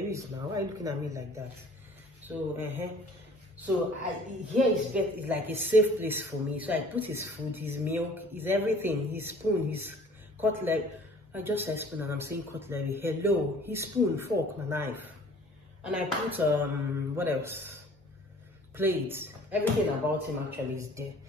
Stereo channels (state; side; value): normal; both; correlation 0.51